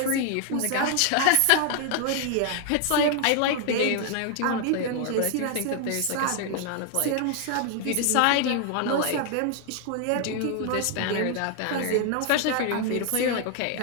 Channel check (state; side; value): different; both; correlation 0.00